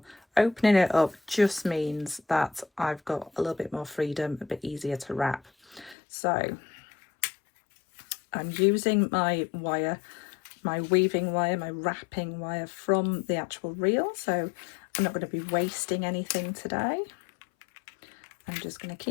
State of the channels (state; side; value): drops out; right; at 6.0 s